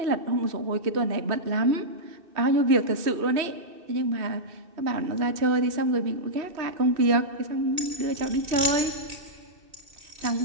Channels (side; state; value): left; late; 2.6 ms